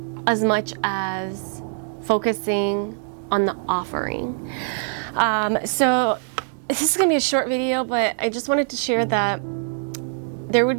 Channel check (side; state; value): left; silent; digital silence